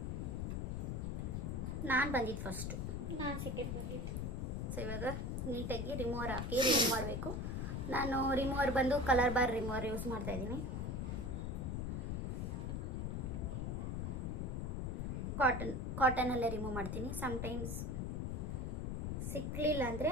ನಾನು ಬಂದಿದ್ದು ಫಸ್ಟು, ನಾನು ಸೆಕೆಂಡ್ ಬಂದಿದ್ದು. ಸೊ ಇವಾಗ ನೀಟಾಗಿ ರಿಮೂವರ್ ಹಾಕಿ ರಿಮೂವ್ ಮಾಡಬೇಕು. ನಾನು ರಿಮೂವರ್ ಬಂದು ಕಲರ್ ಬಾರ್ ರಿಮೂವರ್ ಯೂಸ್ ಮಾಡ್ತಾ ಇದ್ದೀನಿ. ಕಾಟನಲ್ಲೇ ರಿಮೂವ್ ಮಾಡ್ತೀನಿ. ಸಮ್ಟೈಮ್ಸ್ ಸಿಕ್ಕಲಿಲ್ಲ ಅಂದರೆ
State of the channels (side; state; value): left; noise; rumble, 1 dB below the sound